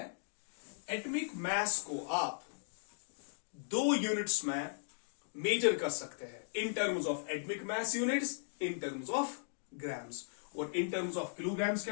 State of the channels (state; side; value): silent; right; digital silence